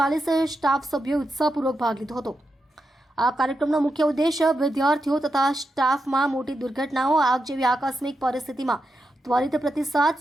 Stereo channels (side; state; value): both; normal; correlation 0.86